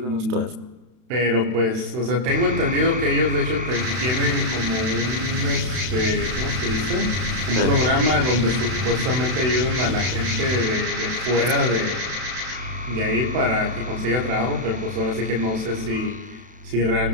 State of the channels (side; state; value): left; late; 32 ms